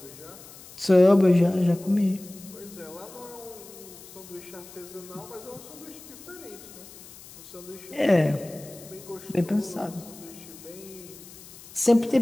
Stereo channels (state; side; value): noise; left; hiss, 18 dB below the sound